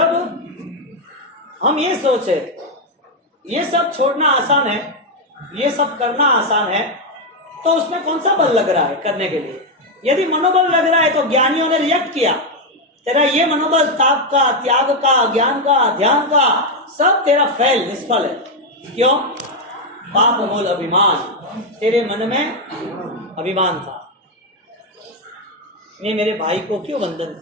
हम ये सोचे ये सब छोड़ना आसान है, ये सब करना आसान है, तो उसमें कौन सा बल लग रहा है करने के लिए? यदि मनोबल लग रहा है तो ज्ञानियों ने रिएक्ट किया, तेरा ये मनोबल ताप का, त्याग का, ज्ञान का, ध्यान का सब तेरा फेल निष्फल है। क्यों? पाप मूल अभिमान, तेरे मन में अभिमान था। मैं मेरे भाई को क्यों वंदन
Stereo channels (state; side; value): normal; both; correlation 0.04